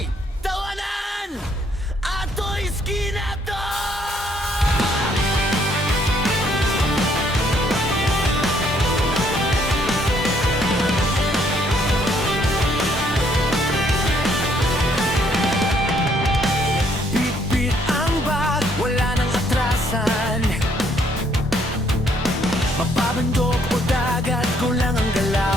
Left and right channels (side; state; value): both; normal; correlation 0.67